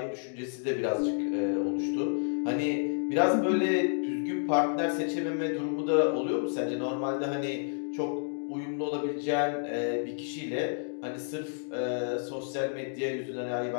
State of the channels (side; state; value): right; silent; digital silence